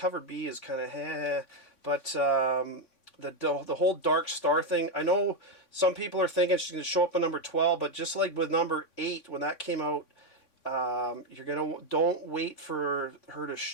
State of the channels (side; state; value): right; late; 3.6 ms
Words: B is kind of but the whole Dark Star thing. I know some people are thinking she's going to show up in number 12, but just like with number 8 when that came out, don't wait for her